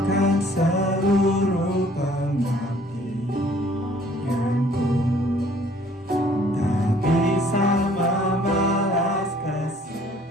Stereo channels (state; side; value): normal; both; correlation 0.57